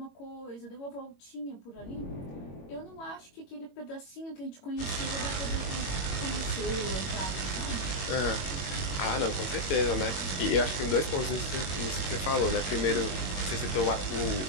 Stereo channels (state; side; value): late; right; 22 ms